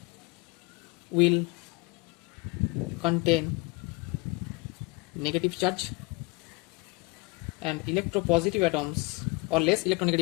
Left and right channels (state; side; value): quieter; right; 25.9 dB